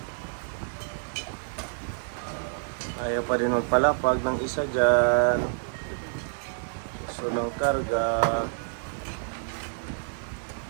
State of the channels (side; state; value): left; silent; digital silence